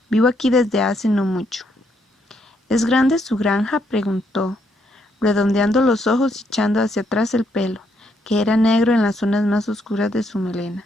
Vivo aquí desde hace no mucho». «¿Es grande su granja?», preguntó, redondeando los ojos y echando hacia atrás el pelo, que era negro en las zonas más oscuras de su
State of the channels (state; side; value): normal; both; correlation 0.74